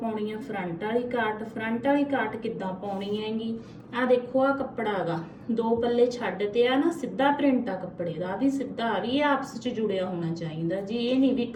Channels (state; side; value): identical; both; correlation 1.00